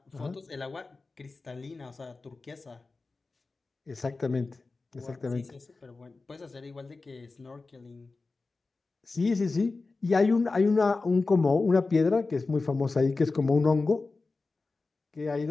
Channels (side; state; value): right; quieter; 3.7 dB